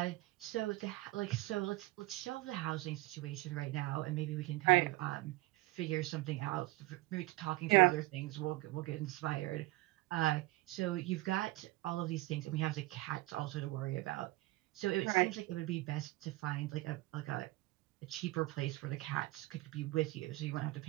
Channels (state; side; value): quieter; left; 20.1 dB